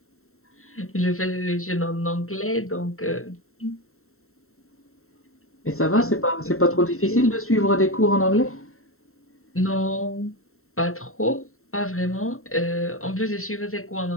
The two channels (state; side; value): late; right; 0.63 ms